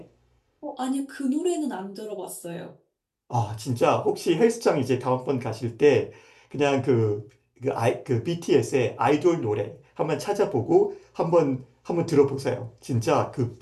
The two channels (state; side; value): identical; both; correlation 1.00